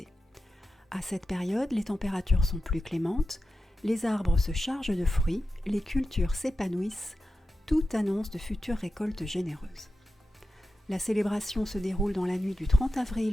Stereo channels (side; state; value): both; normal; correlation 0.91